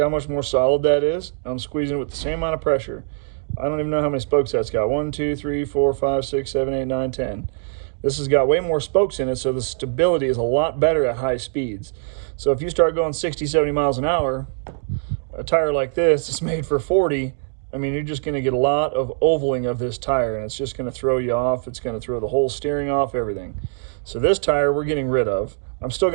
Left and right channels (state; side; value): silent; left; digital silence